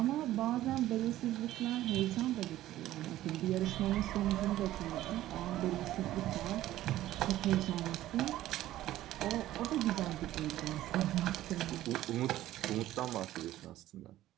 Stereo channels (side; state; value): left; quieter; 14.3 dB